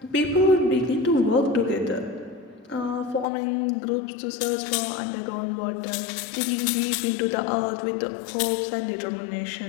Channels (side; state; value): right; drops out; at 3.2 s